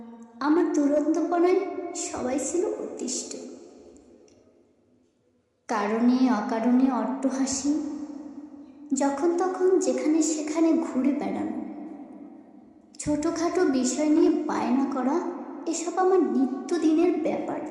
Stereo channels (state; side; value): identical; both; correlation 1.00